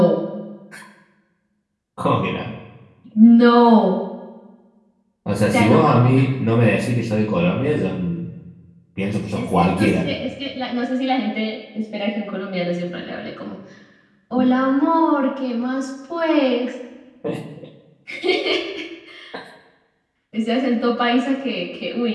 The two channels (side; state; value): both; identical; correlation 1.00